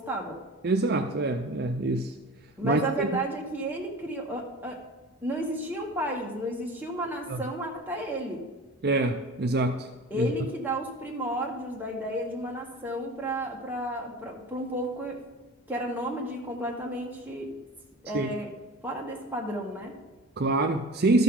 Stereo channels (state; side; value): normal; both; correlation 0.37